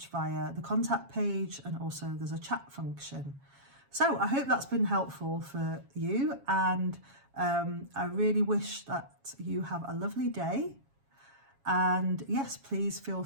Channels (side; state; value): left; late; 7.3 ms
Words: via the contact page, and also there's a chat function. So I hope that's been helpful for you, and I really wish that you have a lovely day. And yes, please feel